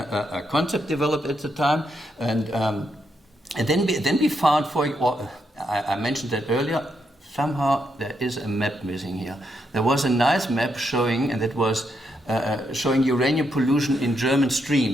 concept developed at the time. And then we found, I mentioned that earlier. Somehow there is a map missing here. There was a nice map showing, and that was showing uranium pollution in German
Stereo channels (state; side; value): normal; both; correlation 0.80